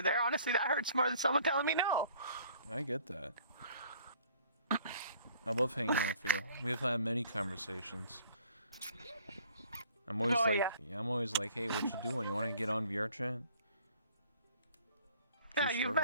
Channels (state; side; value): inverted; both; correlation -0.56